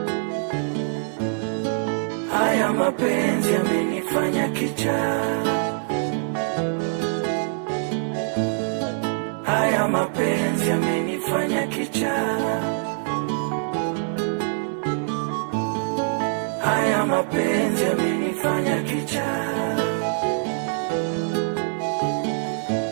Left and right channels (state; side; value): silent; left; digital silence